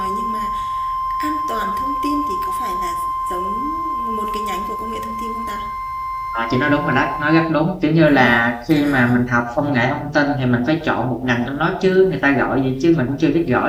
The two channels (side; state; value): both; identical; correlation 1.00